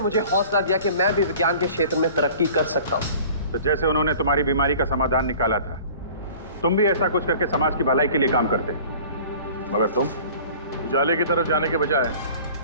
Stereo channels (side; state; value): both; inverted; correlation -0.45